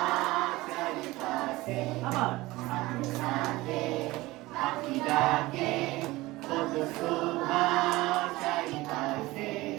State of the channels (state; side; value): quieter; left; 19.6 dB